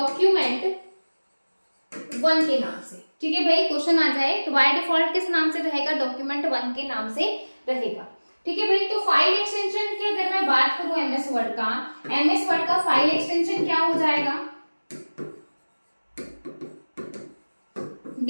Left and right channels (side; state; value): both; inverted; correlation -1.00